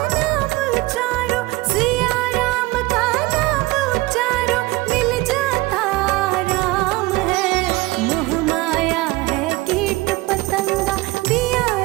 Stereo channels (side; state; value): left; quieter; 20.7 dB